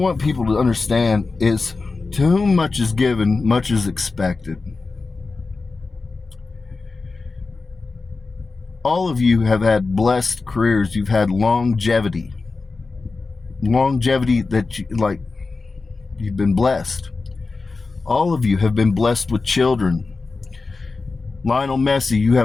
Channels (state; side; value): quieter; right; 4.0 dB